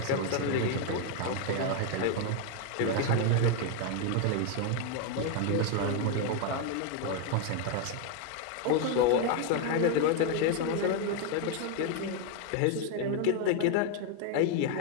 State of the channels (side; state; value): both; different; correlation 0.01